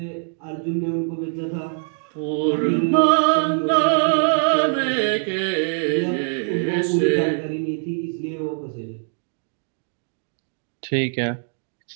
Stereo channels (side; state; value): left; silent; 64 dB below the other